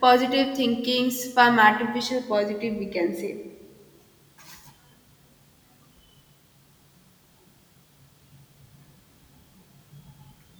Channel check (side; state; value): both; identical; correlation 1.00